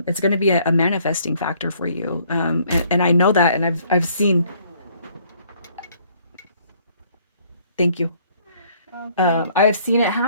it's going to be a manifesting factor for you. And I know that, and I've seen. Thank you. I've seen it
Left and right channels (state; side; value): inverted; both; correlation -0.62